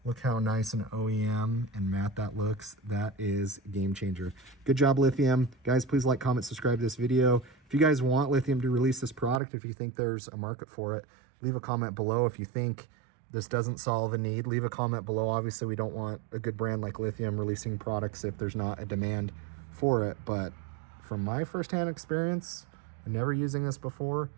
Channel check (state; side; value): drops out; left; at 9.4 s